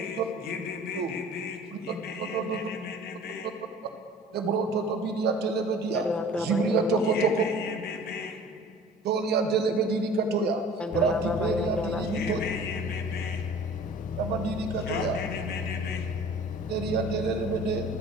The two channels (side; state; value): both; normal; correlation 0.46